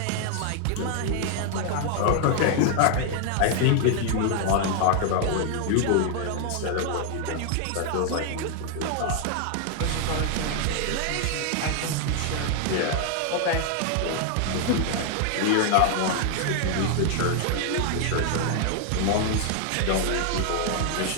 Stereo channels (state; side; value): different; both; correlation 0.00